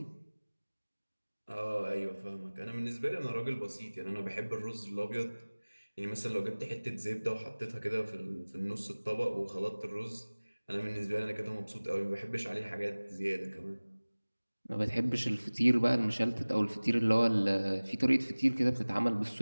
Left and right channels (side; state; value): both; inverted; correlation -1.00